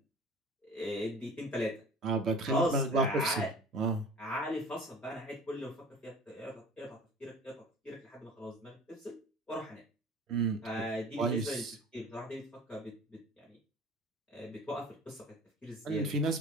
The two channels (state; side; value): normal; both; correlation 0.43